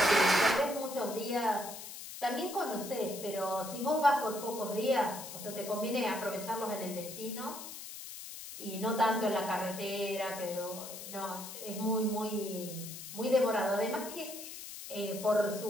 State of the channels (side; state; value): left; noise; hiss, 11 dB below the sound